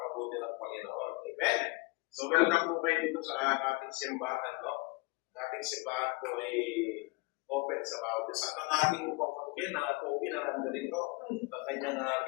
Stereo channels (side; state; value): right; quieter; 27.3 dB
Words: ng Panginoon. Amen? So, welcome po kayo dito sa ating simbahan, no? Ang ating simbahan po ay open sa bawat isa. At ang ating pagkakin na po pinaranda dito, ang kanyang